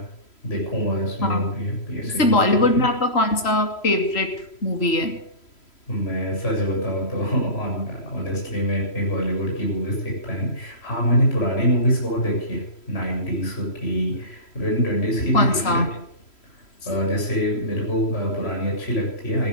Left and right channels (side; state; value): right; late; 3.1 ms